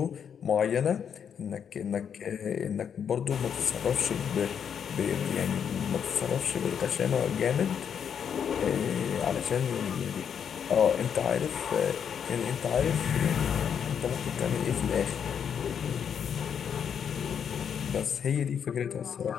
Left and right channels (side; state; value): right; quieter; 7.8 dB